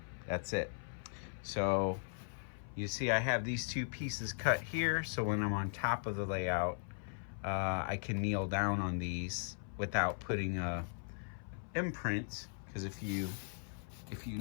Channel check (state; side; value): silent; right; 52 dB below the other